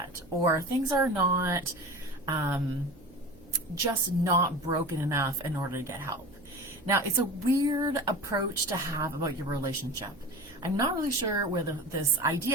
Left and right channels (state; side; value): noise; right; hum, 26 dB below the sound